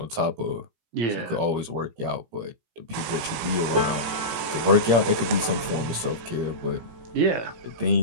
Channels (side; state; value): left; late; 17 ms